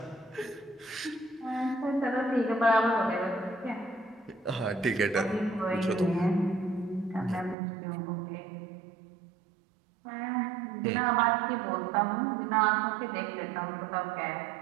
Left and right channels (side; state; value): left; drops out; at 7.6 s